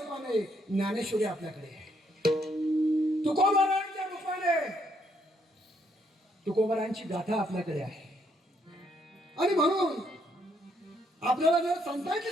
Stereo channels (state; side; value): normal; both; correlation 0.72